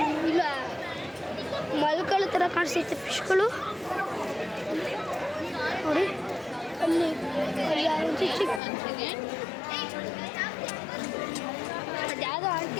ಇಲ್ಲ, ಮಲ್ಕಳ ಥರ ಕಾಣಿಸ್ತೈತೆ ಫಿಶ್ಗಳು ನೋಡಿ. ಅಲ್ಲಿ ಅದ್ಯಾವುದೋ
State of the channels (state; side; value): drops out; right; at 8.6 s